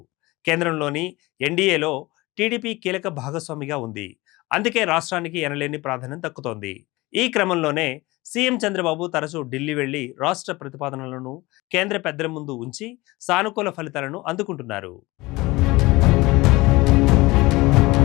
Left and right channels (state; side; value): quieter; right; 21.3 dB